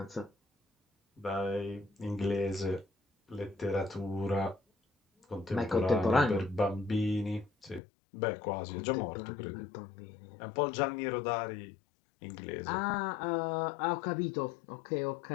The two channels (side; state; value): right; drops out; at 7.8 s